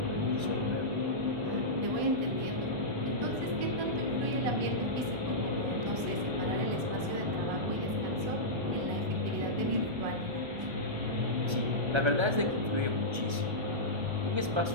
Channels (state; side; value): late; left; 1.3 ms